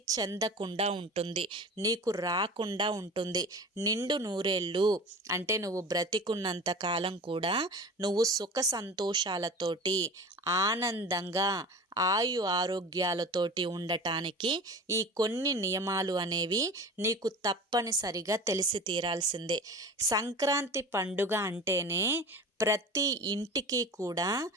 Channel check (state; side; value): normal; both; correlation 0.36